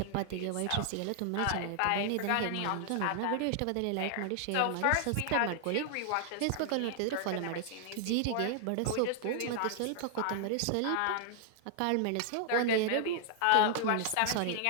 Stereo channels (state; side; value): different; both; correlation 0.00